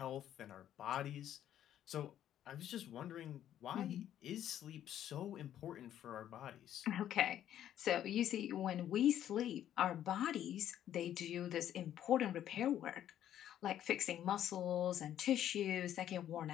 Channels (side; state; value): right; quieter; 11.1 dB